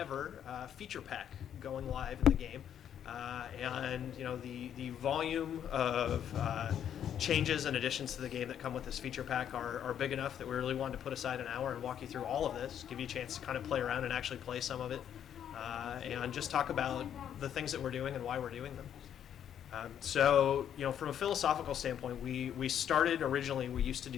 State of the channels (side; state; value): right; quieter; 9.5 dB